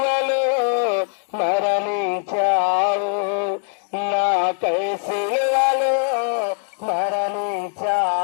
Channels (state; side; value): silent; right; digital silence